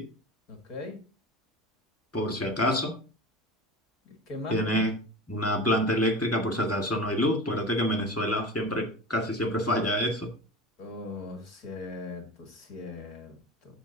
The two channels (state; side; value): normal; both; correlation 0.32